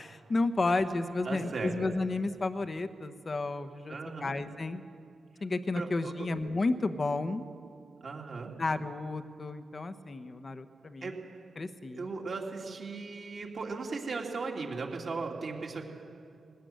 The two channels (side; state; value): both; normal; correlation 0.92